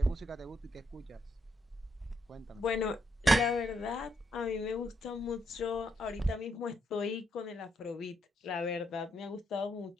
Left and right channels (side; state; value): both; normal; correlation 0.78